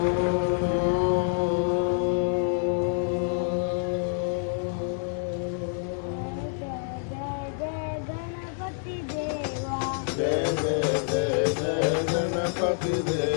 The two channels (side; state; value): right; silent; digital silence